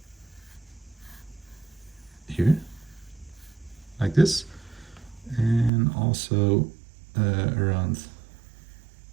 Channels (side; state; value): left; drops out; at 5.7 s